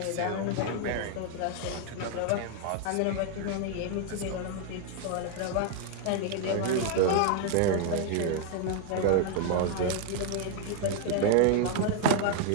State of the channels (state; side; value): different; both; correlation 0.00